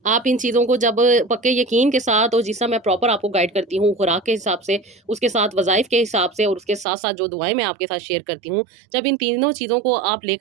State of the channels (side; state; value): left; drops out; at 6.9 s